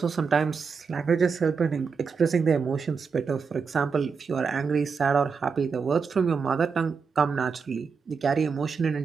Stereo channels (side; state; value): left; quieter; 5.5 dB